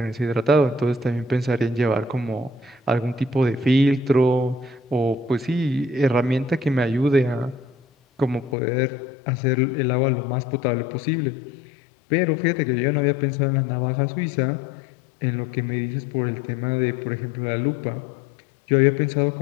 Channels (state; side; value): drops out; right; at 8.6 s